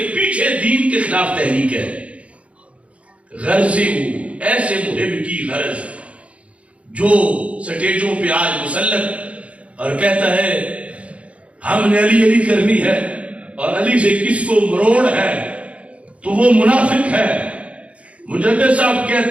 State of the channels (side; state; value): left; late; 0.063 ms